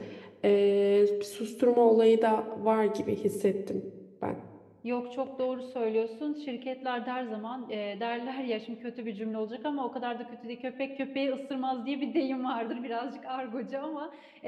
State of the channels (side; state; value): both; identical; correlation 1.00